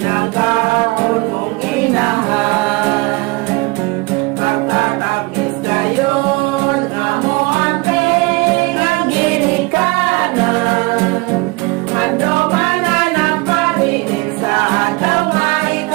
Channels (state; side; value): quieter; left; 25.3 dB